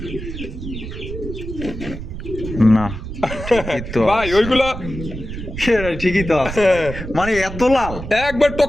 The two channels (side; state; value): right; noise; rumble, 8 dB below the sound